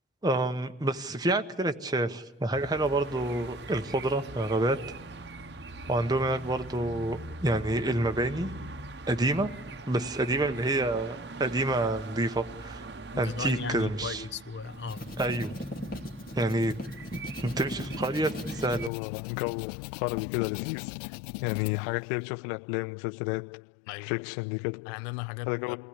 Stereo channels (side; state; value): right; drops out; at 18.9 s